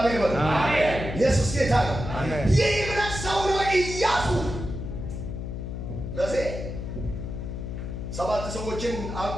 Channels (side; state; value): left; noise; hum, 6 dB below the sound